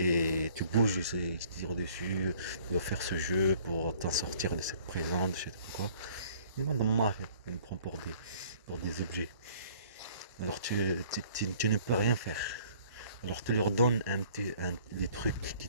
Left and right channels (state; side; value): inverted; both; correlation -0.54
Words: tu bouges, ils te tirent dessus, tu dois faire ce jeu pour t'en sortir de cette prison, de je sais pas quoi. Une bande de mafia, ils nous prennent pour des objets. Alors tu ne peux rien faire. Alors tu leur donnes des trucs qui